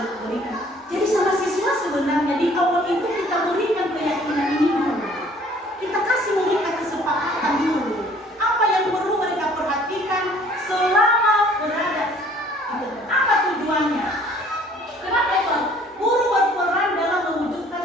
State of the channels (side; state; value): both; normal; correlation 0.56